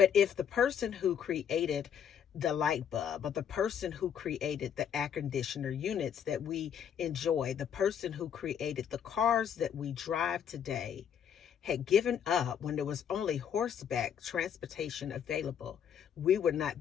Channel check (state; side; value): quieter; right; 8.4 dB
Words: if the person who created the light bulb or the person who created the air conditioner units that we enjoy, the person who created the cars that we drive today, had given up when there was only horseback transportation available, we would not